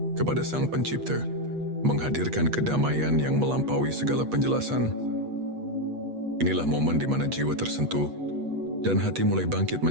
kepada Sang Pencipta, menghadirkan kedamaian yang melampaui segala penjelasan. Inilah momen di mana jiwa tersentuh dan hati mulai bangkit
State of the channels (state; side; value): late; left; 8.3 ms